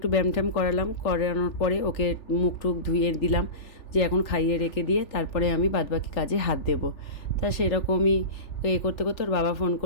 ব্যায়াম ট্যাম করানোর পরে ওকে মুখ টুক ধুয়ে দিলাম, যে এখন খাইয়ে রেখে দিয়ে তারপরে আমি বাদবাকি কাজে হাত দেবো। তা সেরকমই করতে করতে ওর বাবা ফোন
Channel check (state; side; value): late; right; 3.4 ms